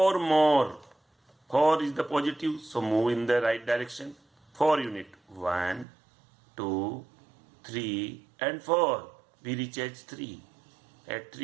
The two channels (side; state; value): left; drops out; at 5.9 s